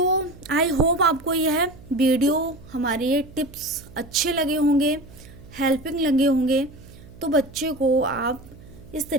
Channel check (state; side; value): noise; right; hum, 20 dB below the sound